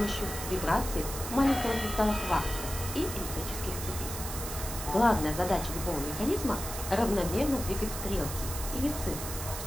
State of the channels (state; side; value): noise; right; hiss, 7 dB below the sound